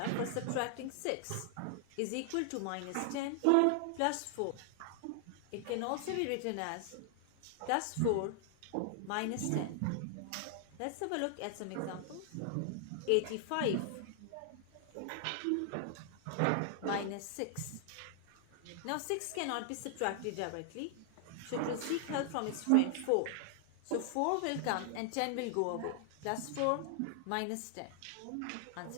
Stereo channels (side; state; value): both; different; correlation 0.00